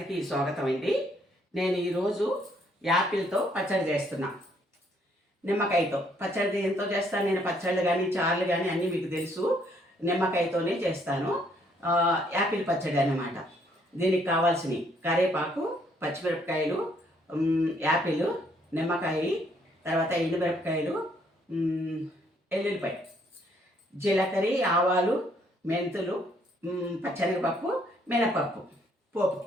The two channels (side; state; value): both; normal; correlation 0.68